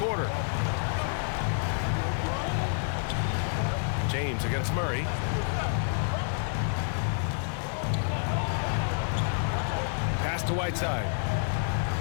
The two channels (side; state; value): right; silent; 59 dB below the other